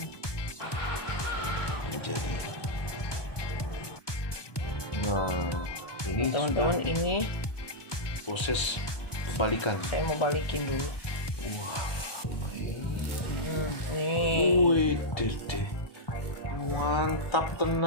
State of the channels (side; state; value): right; late; 1.2 ms